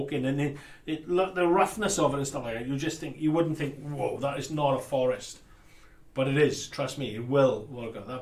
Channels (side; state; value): both; identical; correlation 1.00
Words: in, and the roughness of it and stuff like that, you wouldn't think, whoa, that is not a forest. But it is, trust me, it will work out.